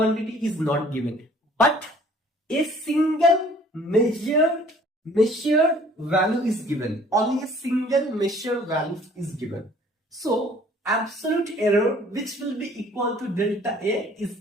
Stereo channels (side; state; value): both; normal; correlation 0.54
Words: is not given. But a single measured value is given. Only a single measured value is given. So, absolute error, which will be equal to delta A,